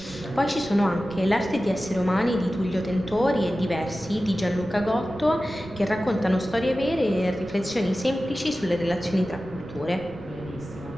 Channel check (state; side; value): noise; right; rumble, 20 dB below the sound